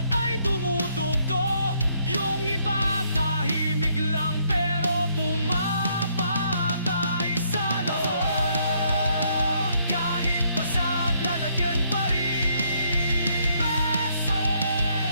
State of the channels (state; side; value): inverted; both; correlation -0.70